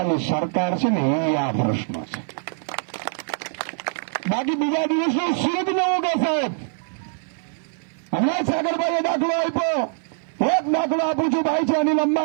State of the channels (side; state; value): left; silent; 58 dB below the other